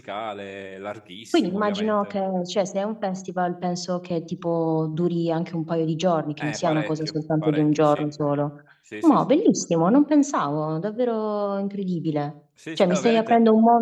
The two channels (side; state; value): both; identical; correlation 1.00